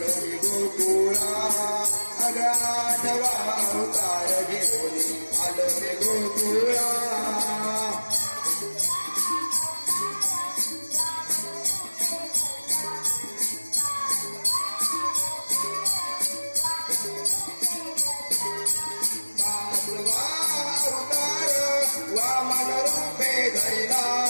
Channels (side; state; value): both; inverted; correlation -1.00